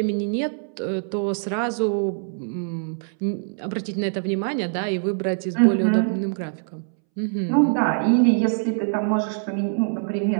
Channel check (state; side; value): silent; left; 63 dB below the other